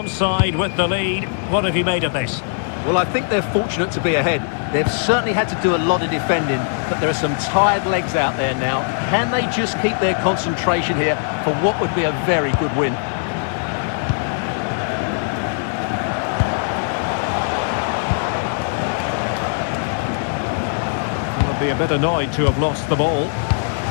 side with the lead. What have you made of this? Well, I think they're fortunate to be ahead. They've certainly had to do a lot of defending, but there are some tired legs out there now. Can they just keep their concentration here for what would be a very good win? They'll be a bit annoyed to have lost the ball.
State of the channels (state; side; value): silent; right; digital silence